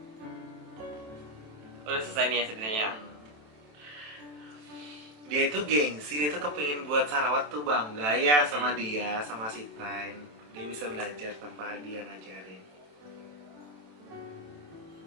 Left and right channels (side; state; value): left; late; 27 ms